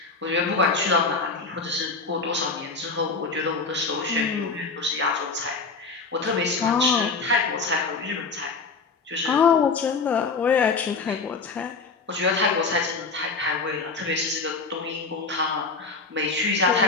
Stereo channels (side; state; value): right; quieter; 4.3 dB